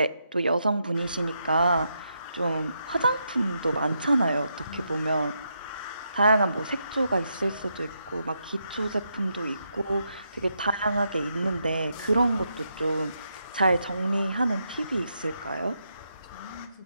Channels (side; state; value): both; inverted; correlation -0.81